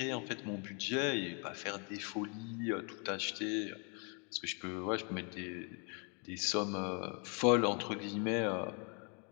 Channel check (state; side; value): quieter; right; 36.1 dB